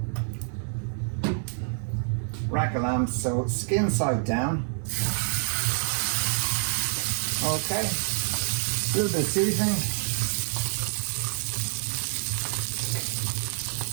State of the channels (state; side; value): silent; left; 60 dB below the other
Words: Rack of lamb, so skin side down. Okay. A little bit of seasoning.